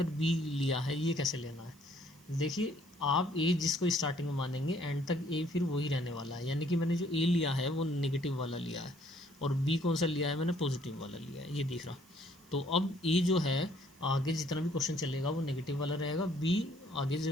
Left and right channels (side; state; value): right; noise; hiss, 27 dB below the sound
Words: B लिया है, ये कैसे लेना है, देखिए आप A जिसको स्टार्टिंग में मानेंगे एंड तक A फिर वही रहने वाला है। यानी कि मैंने जो A लिया है वो नेगेटिव वाला लिया है, और B कौन सा लिया है, मैंने पॉजिटिव वाला लिया है, ये दिख रहा। तो अब ए जो है आगे जितना भी क्वेश्चन चलेगा वो नेगेटिव वाला रहेगा, बी आगे